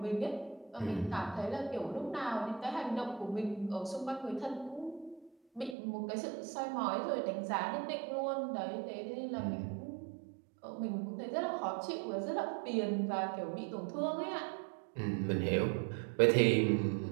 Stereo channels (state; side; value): drops out; left; at 5.8 s